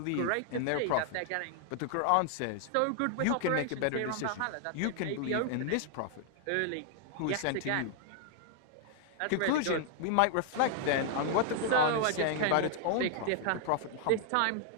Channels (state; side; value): different; both; correlation 0.00